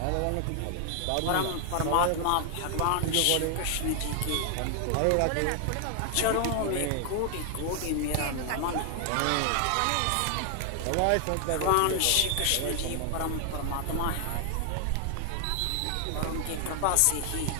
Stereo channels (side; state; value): both; different; correlation 0.00